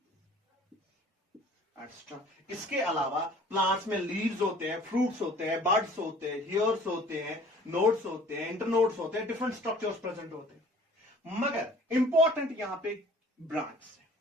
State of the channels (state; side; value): normal; both; correlation 0.51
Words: extra. इसके अलावा प्लांट्स में लीव्स होते हैं, फ्रूट्स होते हैं, बड्स होते हैं, हेयर्स होते हैं, नोड्स होते हैं, इंटरनोड्स होते हैं, डिफरेंट स्ट्रक्चर्स प्रेजेंट होते हैं। मगर इंपॉर्टेंट यहां पे ब्रांच है।